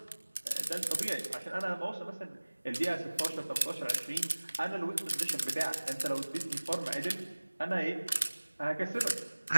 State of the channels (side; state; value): both; inverted; correlation -1.00